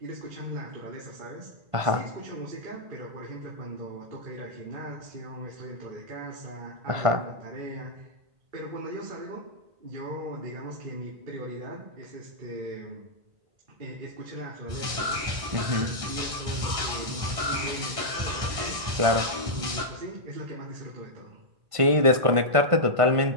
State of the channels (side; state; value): left; late; 1.5 ms